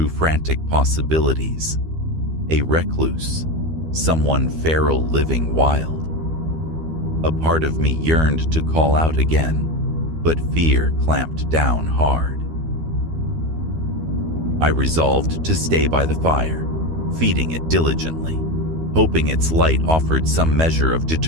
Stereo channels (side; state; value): left; late; 12 ms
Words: frantic possibilities. A recluse, someone feral living wild. A part of me yearned to call out again, but fear clamped down hard. I resolved to stay by the fire, feeding it diligently, hoping its light offered some measure of